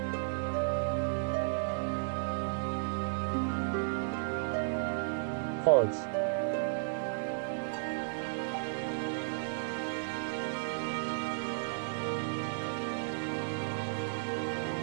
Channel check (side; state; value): left; silent; digital silence